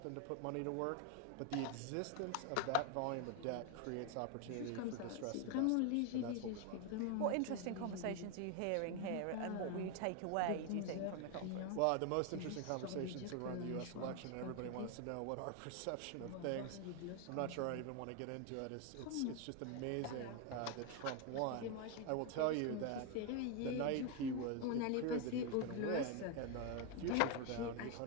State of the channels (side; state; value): both; different; correlation 0.01